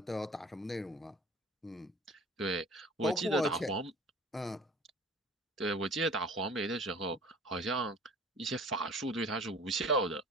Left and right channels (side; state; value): both; normal; correlation 0.44